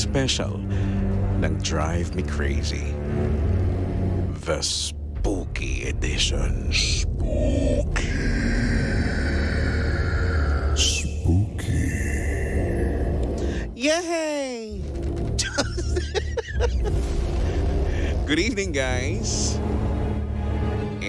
ng Drive Me Crazy, The Spooky Edition. Spooky. Yay! Good evening, guys.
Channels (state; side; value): identical; both; correlation 1.00